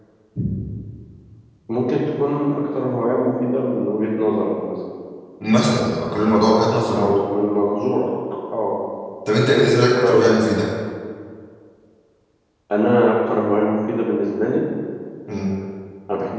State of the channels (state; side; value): identical; both; correlation 1.00